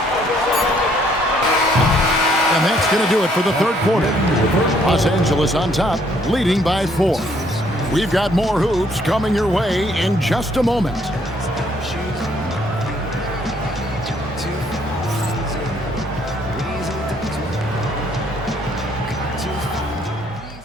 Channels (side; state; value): both; normal; correlation 0.66